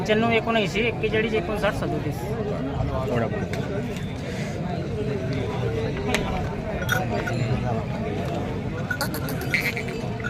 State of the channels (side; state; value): both; identical; correlation 1.00